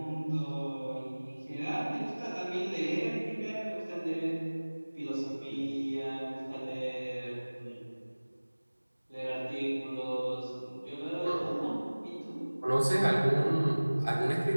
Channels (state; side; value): inverted; both; correlation -1.00